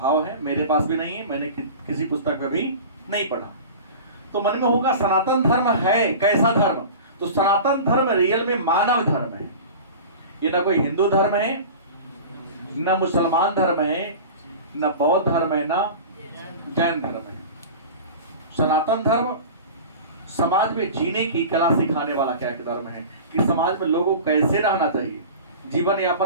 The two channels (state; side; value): inverted; both; correlation -0.35